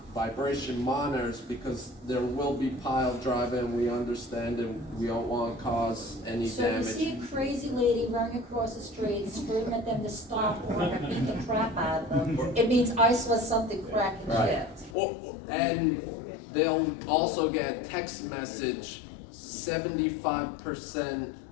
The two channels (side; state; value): right; drops out; at 15.0 s